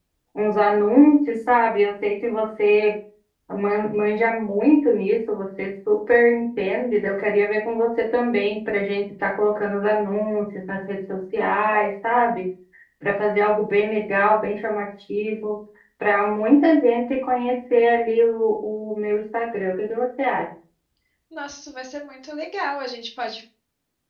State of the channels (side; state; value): both; identical; correlation 1.00